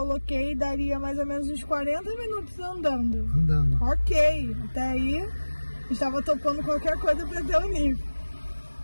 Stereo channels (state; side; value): inverted; both; correlation -1.00